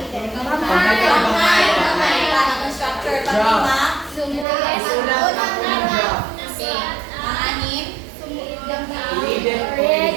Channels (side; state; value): left; drops out; at 4.5 s